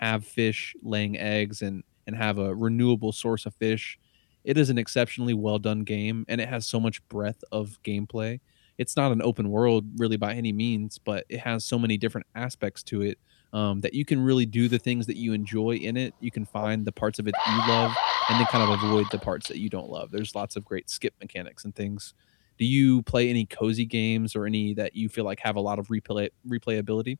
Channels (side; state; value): right; silent; digital silence